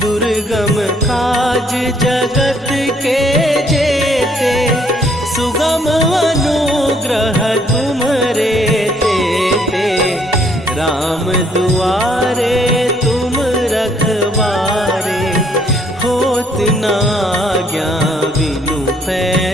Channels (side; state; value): both; normal; correlation 0.66